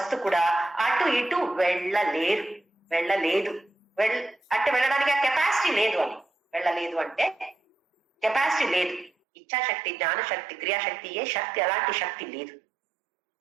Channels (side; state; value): left; drops out; at 9.1 s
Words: కూడా అటు ఇటు వెళ్ళలేదు. అంటే వెళ్ళడానికి ఆ కెపాసిటీ లేదు అని. వెళ్ళలేదు అంటే కెపాసిటీ లేదు. ఇచ్ఛాశక్తి జ్ఞానశక్తి క్రియాశక్తి ఏ శక్తి అలాంటి శక్తి లేదు.